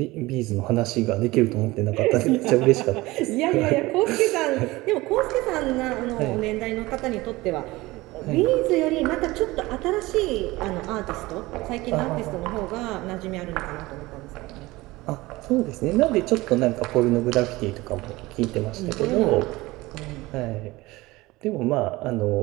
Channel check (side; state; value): left; quieter; 20.2 dB